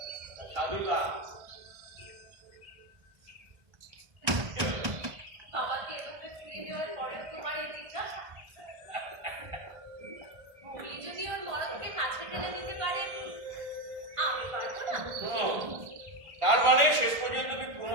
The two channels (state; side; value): late; left; 1.5 ms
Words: সাধুতা? বাবাকে এভাবে ফিরে দেওয়ার পরেও তোমার এই জিজ্ঞাসা? মুগলি যদি ওর মরদকে কাছে টেনে দিতে পারে, আমি পারবো না? তার মানে শেষ পর্যন্ত তুমি